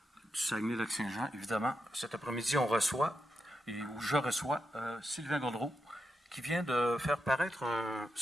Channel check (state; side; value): normal; both; correlation 0.86